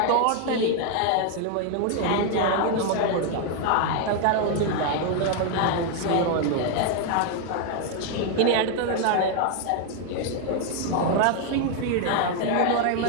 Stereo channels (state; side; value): different; both; correlation 0.01